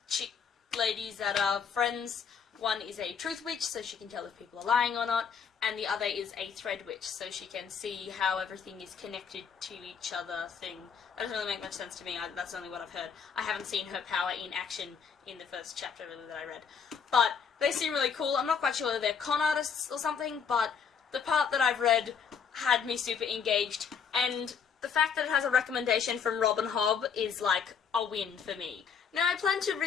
chick ladies that are friends. One is a truth witch, so she can tell if people are lying or not, and the other is a thread witch, so she can see how everything is connected to each other thing. That doesn't really make much sense to me, that's only what I've heard. I haven't seen her power in action in the first chapter really that I read. But they seem really cool. I'm not quite sure whether they're con artists or something, but the part that I've read had me super engaged, and the fact that it has a recommendation from Robin Hobb is like a win for me. Now, I plan to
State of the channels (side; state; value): right; quieter; 6.7 dB